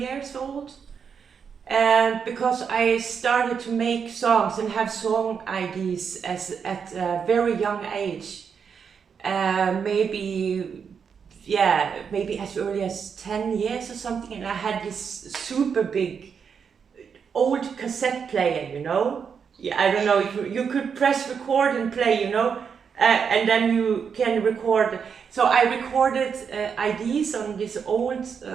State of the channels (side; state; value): left; quieter; 6.6 dB